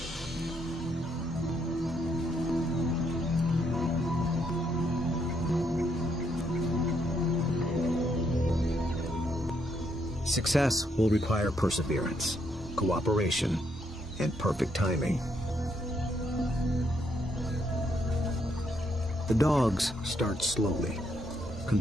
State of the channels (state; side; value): normal; both; correlation 0.74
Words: Success will require perseverance, cooperation, and perfect timing. The dogs start slowly,